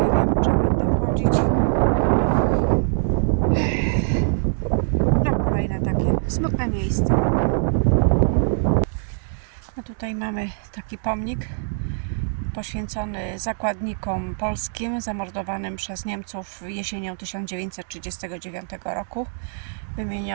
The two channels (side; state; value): left; silent; digital silence